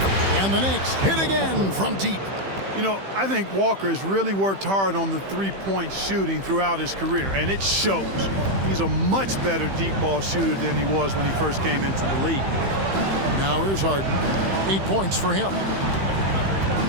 And the Knicks hit again from deep. You know, I think Walker has really worked hard on the three-point shooting throughout his career, and it shows. He's a much better deep ball shooter than he was when he first came into the league. Now here's Harden. 8 points for him.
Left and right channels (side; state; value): left; late; 15 ms